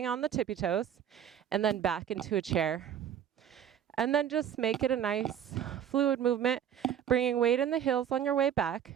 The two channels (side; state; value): left; quieter; 9.5 dB